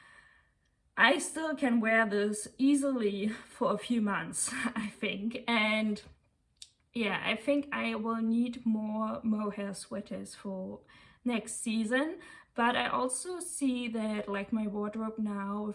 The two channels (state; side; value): identical; both; correlation 1.00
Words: I still can wear this easily for a few months, I think. And yeah, I think I will need more mohair sweaters for next season. But I also see that, like, my wardrobe now